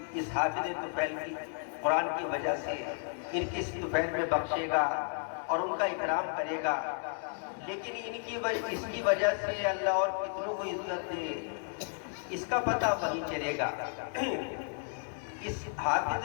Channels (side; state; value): right; silent; 56 dB below the other